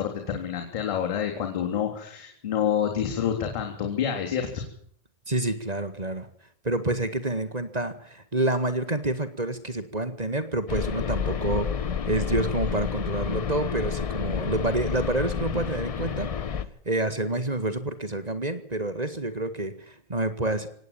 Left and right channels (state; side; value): late; left; 1.9 ms